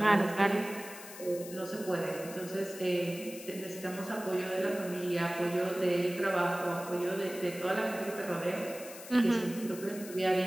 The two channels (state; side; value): noise; left; hiss, 14 dB below the sound